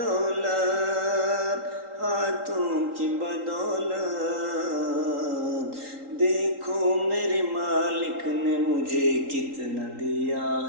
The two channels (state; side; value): late; left; 3.8 ms